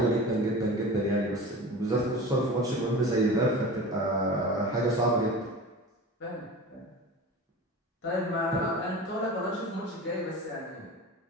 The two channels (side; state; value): both; normal; correlation 0.34